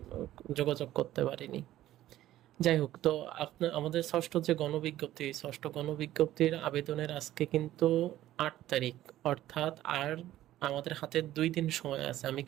যোগাযোগ করতে পারিনি। যাই হোক, তো আপনার আমাদের ষষ্ঠ গণবিজ্ঞপ্তির আবেদনের আজকে কিন্তু 8 তারিখ, অর্থাৎ আর আমাদের হাতে 2 দিন সময় আছে। আমি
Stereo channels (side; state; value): left; quieter; 14.0 dB